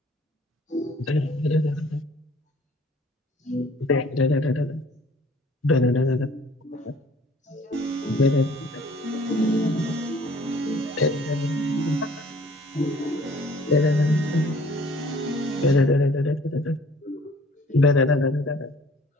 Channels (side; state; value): both; normal; correlation 0.54